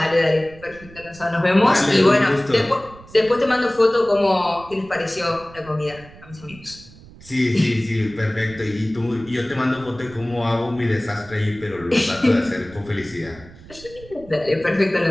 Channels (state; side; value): noise; right; rumble, 20 dB below the sound